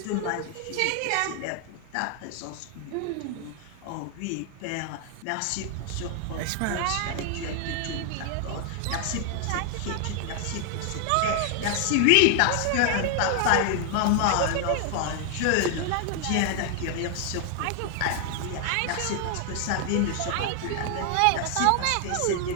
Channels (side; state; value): both; different; correlation 0.00